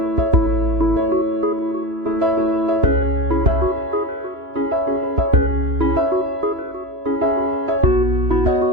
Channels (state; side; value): late; left; 3.0 ms